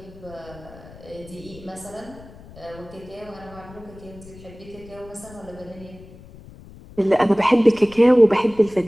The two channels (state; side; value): noise; left; rumble, 20 dB below the sound